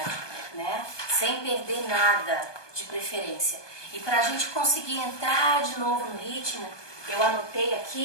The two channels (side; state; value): right; late; 1.2 ms